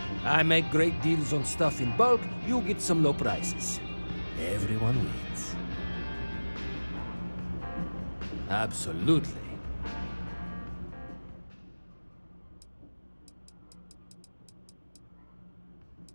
I make great deals on stuff in bulk, you get some low prices. Everyone wins. Absolutely.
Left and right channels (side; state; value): both; inverted; correlation -1.00